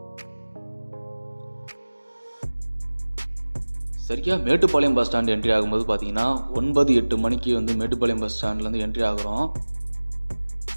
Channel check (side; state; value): both; inverted; correlation -1.00